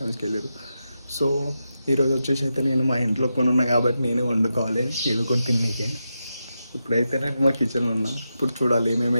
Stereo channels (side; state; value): both; inverted; correlation -0.88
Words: వెళ్ళారు. సో ఈరోజు వచ్చేసి అయితే నేను మా ఇంట్లో కొని ఉన్నా కాబట్టి నేనే వండుకోవాలి ఏదో కొన్ని తిన్నీకే. ఇప్పుడైతే నేను మా కిచెన్లో ఉన్నా. ఇప్పుడు చూడాలి